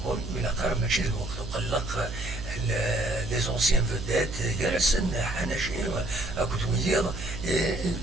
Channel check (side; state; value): right; noise; hum, 9 dB below the sound